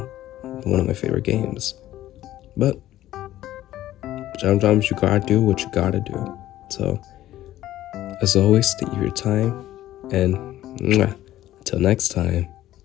one of my favorite games. But sometimes you gotta do what you gotta do. So, as always, thank you for your time, and until next time,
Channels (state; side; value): quieter; right; 14.0 dB